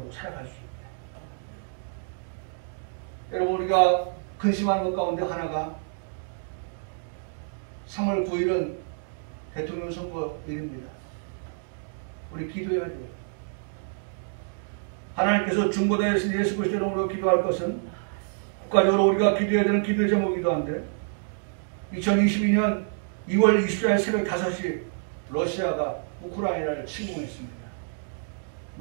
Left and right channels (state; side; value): silent; left; digital silence